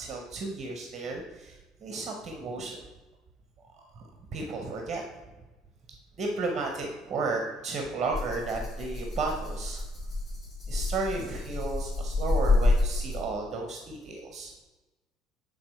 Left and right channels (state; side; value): normal; both; correlation 0.70